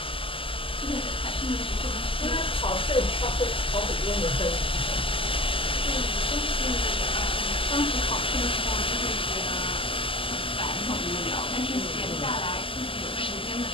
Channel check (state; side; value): late; right; 0.26 ms